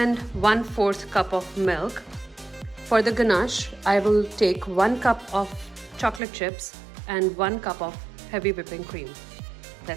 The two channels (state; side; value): drops out; left; at 6.2 s